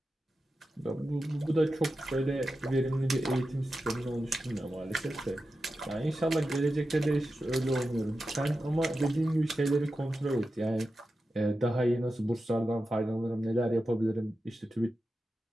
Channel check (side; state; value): both; normal; correlation 0.91